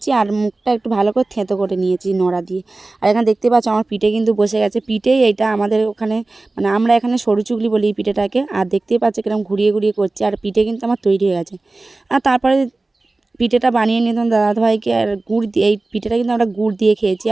আর মুখটা একটু ভালো করে থেঁতো করে নিয়েছি নোড়া দিয়ে। আর এখানে দেখতে পাচ্ছ আমার পিঠে কিন্তু বসে গেছে। পিঠেই এইটা আমাদের ওখানে, মানে আমরা এখানে সরু চুগলি বলি এই পিঠেটাকে। আর দেখতেই পাচ্ছ কিরকম ঘুরিয়ে ঘুরিয়ে করছে, আর পিঠে কিন্তু আমার তৈরি হয়ে গেছে। আর তারপরে পিঠেটা বানিয়ে নিতাম দাদাভাইকে, আর গুড় দিয়ে, এই পিঠেটা কিন্তু আমরা গুড় দিয়ে খেয়েছি,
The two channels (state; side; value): quieter; left; 3.2 dB